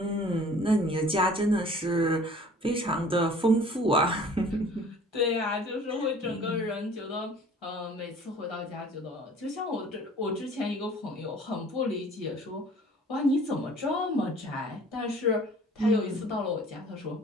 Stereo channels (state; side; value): normal; both; correlation 0.50